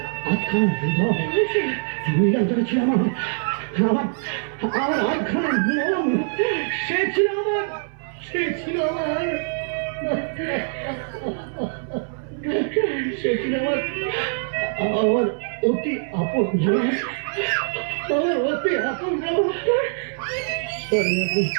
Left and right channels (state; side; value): silent; left; 61 dB below the other